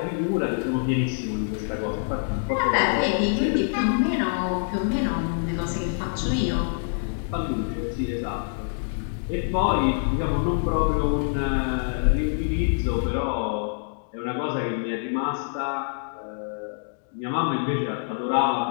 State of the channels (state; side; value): silent; right; digital silence